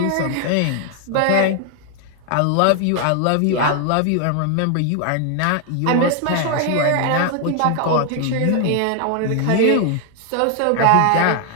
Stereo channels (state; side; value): different; both; correlation 0.00